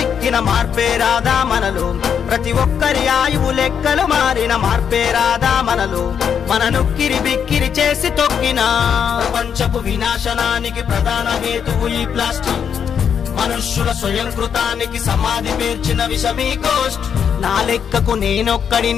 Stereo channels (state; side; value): quieter; right; 7.7 dB